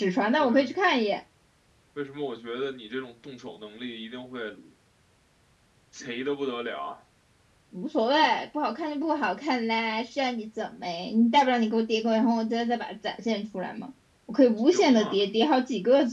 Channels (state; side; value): identical; both; correlation 1.00